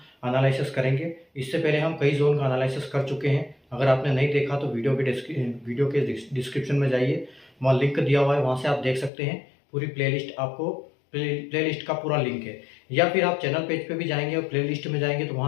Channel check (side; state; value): right; drops out; at 9.1 s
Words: एनालिसिस करेंगे। इससे पहले हम कई जोन का एनालिसिस कर चुके हैं। अगर आपने नहीं देखा तो वीडियो के डिस्क्रिप्शन में जाइए, वहाँ लिंक दिया हुआ है, वहाँ से आप देख सकते हैं। पूरी प्लेलिस्ट आपको प्लेलिस्ट का पूरा लिंक है, या फिर आप चैनल पेज पे भी जाएंगे और प्लेलिस्ट में जाएंगे तो